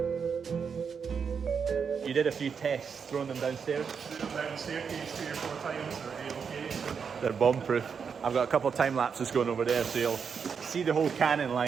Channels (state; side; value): quieter; left; 6.3 dB